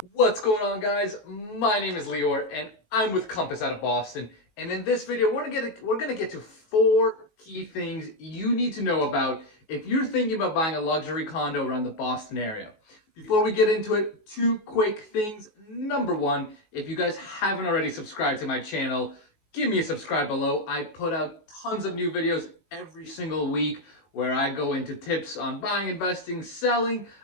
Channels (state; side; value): late; right; 19 ms